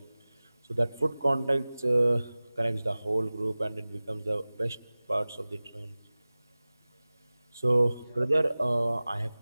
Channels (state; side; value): inverted; both; correlation -0.98